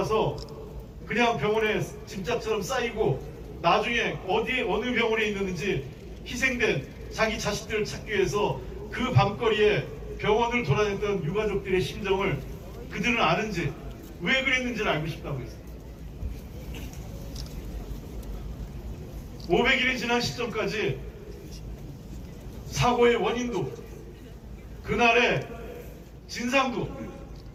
그냥 병원에 짐짝처럼 쌓이고 나중에 어느 병원에 있는지 희생된 자기 자식들을 찾기 위해서 그 밤거리에 병원을 돌아다녔던 유가족들의 심정을 그들은 아는지, 왜 그랬는지를 알고 싶다고 했습니다. 500일이 지난 시점까지 사고의 원인도, 그날의 진상도,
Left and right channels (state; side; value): identical; both; correlation 1.00